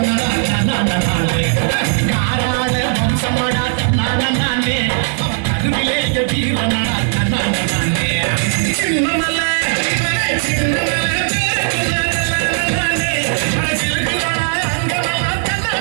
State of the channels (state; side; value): silent; left; digital silence